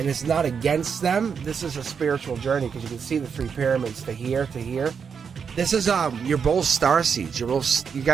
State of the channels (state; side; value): quieter; left; 6.5 dB